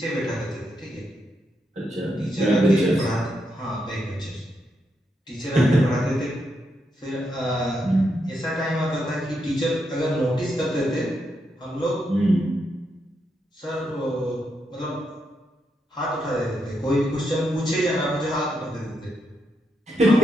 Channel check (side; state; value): both; normal; correlation 0.81